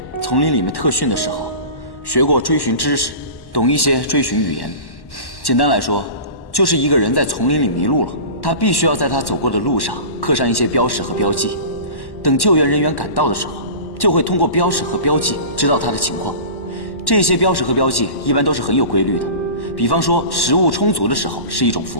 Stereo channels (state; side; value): late; right; 1.1 ms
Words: 丛林里面特训的时候，学过追寻知识，懂一些追寻语言。简单来说，就是一个人在丛林里迷路了，他必须要在他走过的路上刻上一些标识和标记，等救援人员赶到的时候，就会通过标识和标记知道他的情况。这些标识和标记一般都是很有规律的，比方说食物充足的时候是一种符